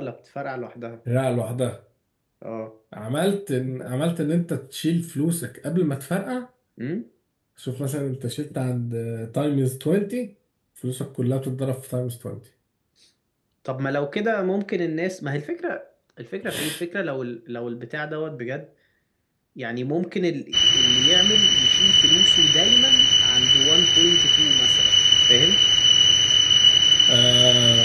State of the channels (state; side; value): identical; both; correlation 1.00